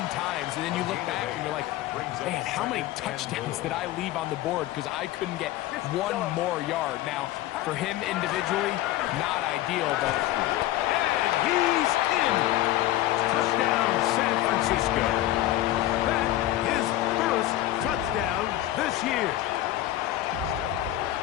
times, and then you look back and you're like, man, how many touchdowns did I leave on the board because I couldn't get one more yard? Now, for him individually, not ideal, but... And he's in! Touchdown, San Francisco. That is first touchdown this year.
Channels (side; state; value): right; quieter; 14.7 dB